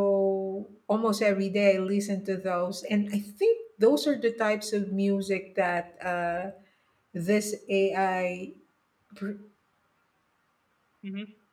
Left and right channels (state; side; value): identical; both; correlation 1.00